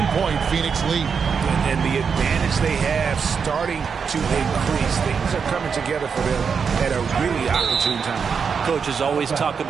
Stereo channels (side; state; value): left; quieter; 6.1 dB